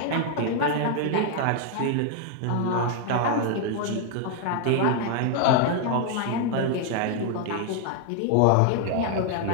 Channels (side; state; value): both; different; correlation 0.00